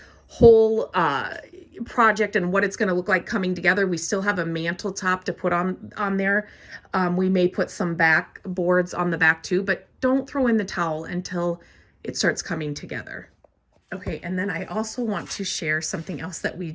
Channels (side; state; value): both; identical; correlation 1.00